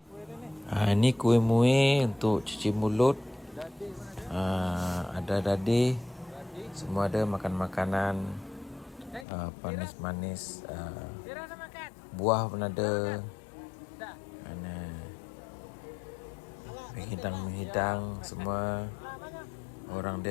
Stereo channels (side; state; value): right; drops out; at 9.2 s